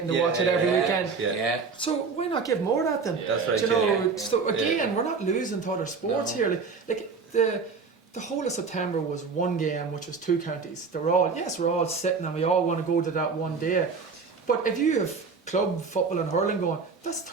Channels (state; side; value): quieter; left; 4.9 dB